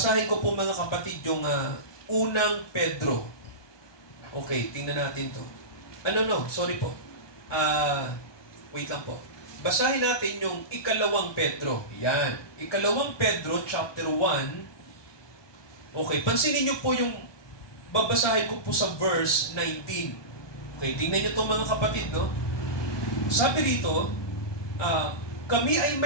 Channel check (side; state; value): right; late; 1.2 ms